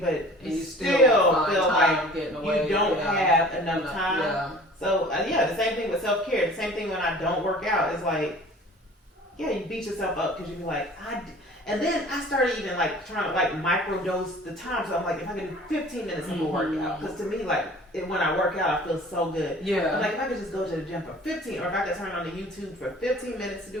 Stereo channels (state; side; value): normal; both; correlation 0.46